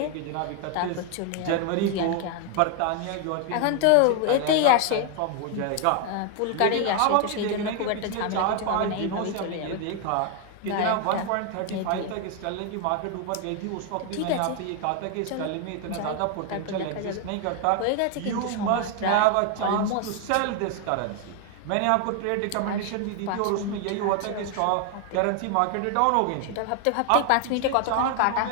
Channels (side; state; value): both; different; correlation 0.00